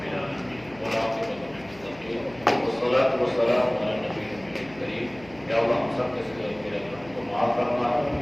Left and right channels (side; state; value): left; noise; hum, 22 dB below the sound